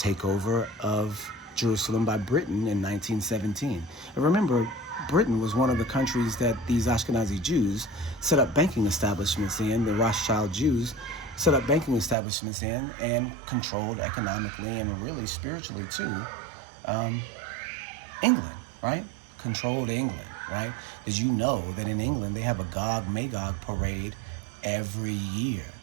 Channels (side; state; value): left; drops out; at 12.2 s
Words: of Jerusalem by Britain in 1917. And remember, Britain was one of the countries that these Ashkenazi Jews set up banking establishments in. The Rothschild Jews set up banking establishments in and controlled economically and really spiritually too England, right? Controlled England, right? Did you know that in England they have a Gog-Magog parade every year?